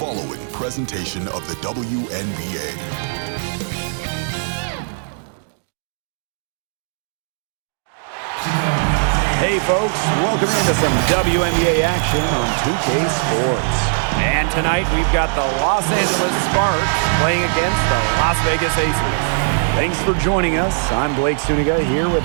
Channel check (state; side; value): silent; left; digital silence